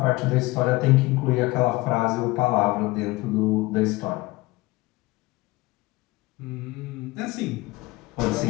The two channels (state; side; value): quieter; right; 21.0 dB